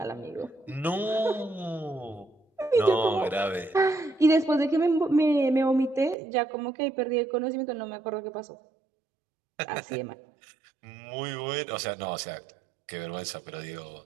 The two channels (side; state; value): left; drops out; at 6.2 s